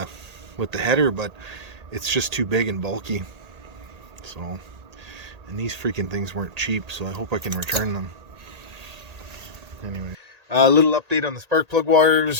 header, but it's just too big and bulky. So, and these freaking things weren't cheap, so I hope I can return them. anyway. A little update on the spark plug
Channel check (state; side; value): late; left; 1.8 ms